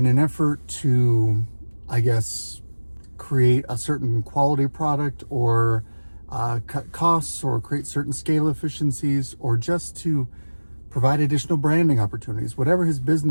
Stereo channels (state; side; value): inverted; both; correlation -1.00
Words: an effort to, I guess, create a certain quality product or cut costs or create certain scale efficiencies or just to provide additional branding opportunities, whatever his